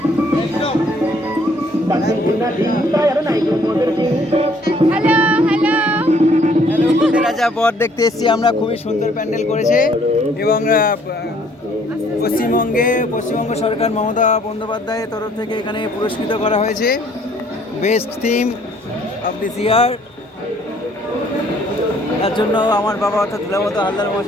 hello hello, রাজা বর দেখতে এসেছি আমরা। খুবই সুন্দর প্যান্ডেল করেছে এবং পশ্চিমবঙ্গ সরকার মমতা বন্দ্যোপাধ্যায়ের তরফ থেকে এখানে পুরস্কৃত করা হয়েছে বেস্ট থিম অফ দিস ইয়ার। তার জন্য আমার বাবা অর্থাৎ দুলাবত হালদার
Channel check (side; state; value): both; normal; correlation 0.62